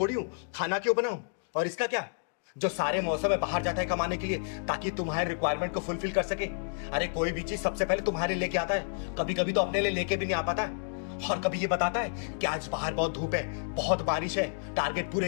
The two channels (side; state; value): right; silent; digital silence